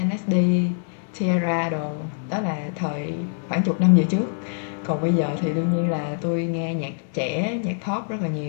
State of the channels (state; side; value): silent; right; digital silence